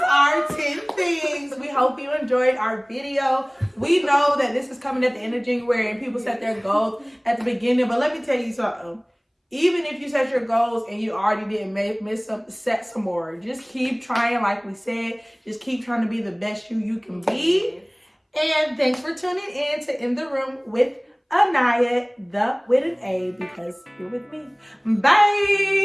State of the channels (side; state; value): both; identical; correlation 1.00